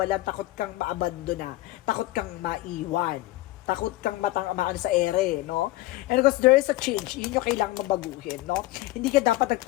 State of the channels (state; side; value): quieter; right; 17.8 dB